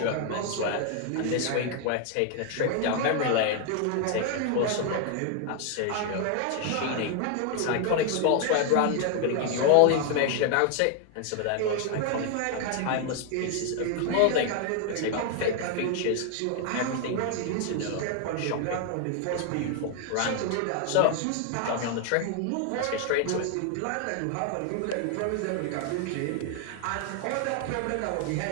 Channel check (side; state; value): both; different; correlation 0.00